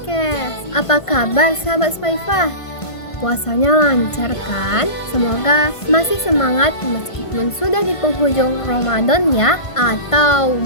Apa kabar sahabat Spaifa? Puasanya lancar kan? Semoga masih semangat meskipun sudah di penghujung Ramadan ya. Atau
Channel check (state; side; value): late; right; 1.5 ms